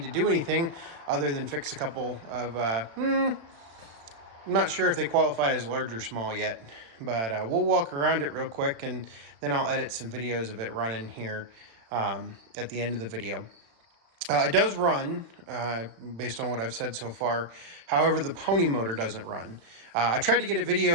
to do anything other than fix a couple of, I'm not sure if they qualify as large or small yet, but we'll walk around it real quick and then I'll edit some videos of it running here at the end of the video. It does run, based on what I've said so far. However, the pony motor doesn't run. I tried to get a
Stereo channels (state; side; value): late; left; 36 ms